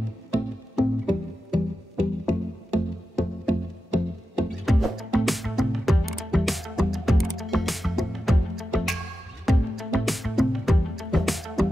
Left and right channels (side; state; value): both; normal; correlation 0.91